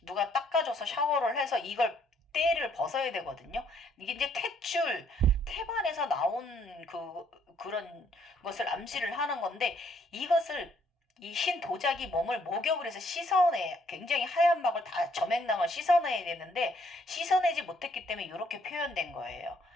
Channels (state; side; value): normal; both; correlation 0.67